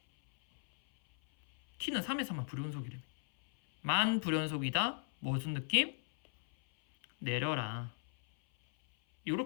t는 3에서만 불연속이라며. 만 불연속이다. 무슨 느낌? 내려라.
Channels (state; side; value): silent; right; 54 dB below the other